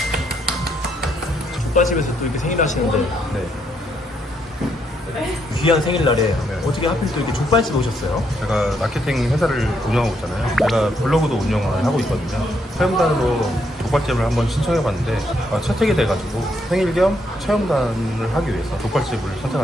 족발집에서 또 이렇게 생일 하시는데 네. 귀한 생일날에 어떻게 하필 또 이렇게 족발집 오셨어요? 제가 마케팅 회사를 운영하고 있잖아요. 제가 블로그도 운영을 하고 있거든요. 체험단으로 족발집을 한번 신청해봤는데 채택이 돼가지고 생일 겸 체험단을 하기 위해서 족발집을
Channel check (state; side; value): normal; both; correlation 0.75